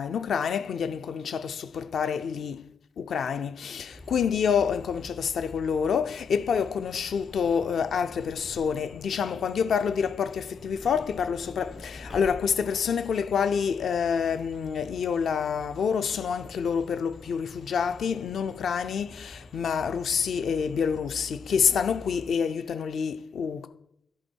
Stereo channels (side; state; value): right; quieter; 6.4 dB